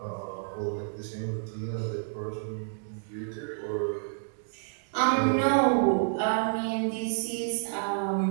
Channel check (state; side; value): silent; left; digital silence